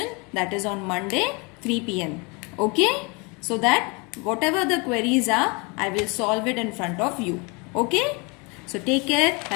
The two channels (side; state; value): right; quieter; 29.7 dB